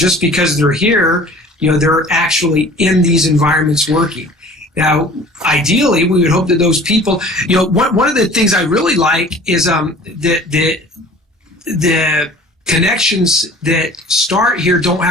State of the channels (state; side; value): normal; both; correlation 0.46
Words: because they're here, they're actually in these environments working. Now, ideally, we would hope that those people, one of the things I really like is the connections that start here don't